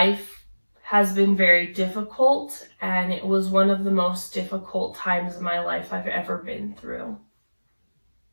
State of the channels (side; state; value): both; inverted; correlation -1.00